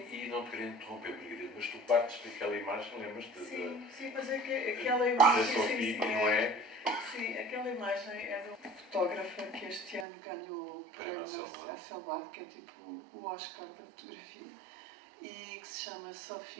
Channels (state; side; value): drops out; left; at 10.1 s